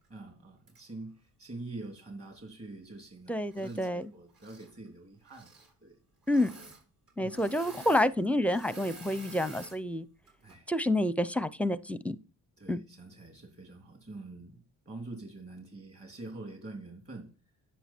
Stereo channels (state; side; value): normal; both; correlation 0.81